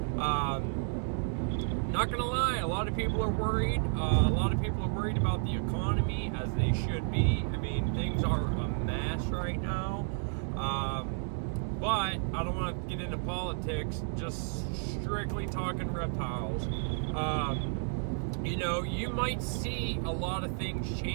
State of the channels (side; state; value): left; silent; 57 dB below the other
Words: not gonna lie, a lot of people are worried. A lot of people are worried about the economy, as they should be. I mean, things are a mess right now. But I don't want to get into politics, just strictly talking reptiles. You know, you might see a lot of things